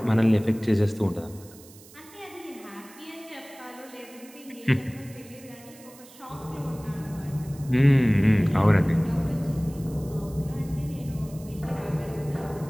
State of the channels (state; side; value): noise; right; hiss, 22 dB below the sound